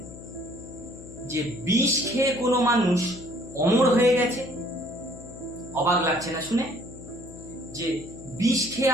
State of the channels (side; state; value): left; noise; hum, 15 dB below the sound